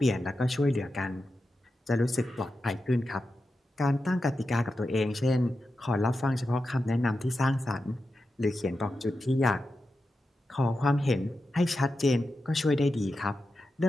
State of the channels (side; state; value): both; normal; correlation 0.90